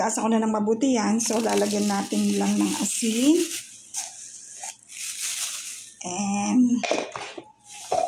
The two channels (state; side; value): identical; both; correlation 1.00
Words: ko na ng mabuti yan. So, lalagyan natin lang ng asin.